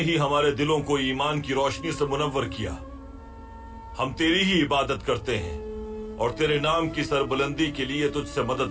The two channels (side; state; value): both; identical; correlation 1.00